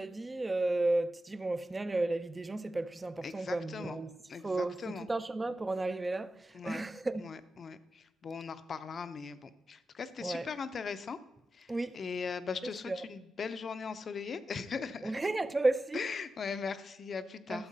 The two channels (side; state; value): both; normal; correlation 0.91